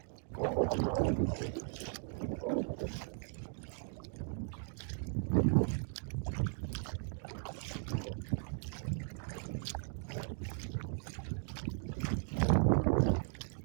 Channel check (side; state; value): left; silent; 53 dB below the other